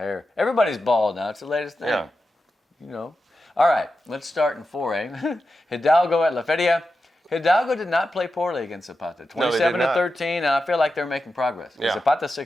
Everybody's bald now. It's the latest thing. Yeah. All right, let's start in 4A. Hidalgo at La Feria. Hidalgo did not play poorly against Zapata. 27-13, and I feel like they're making progress. Yeah. Zapata's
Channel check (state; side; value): normal; both; correlation 0.90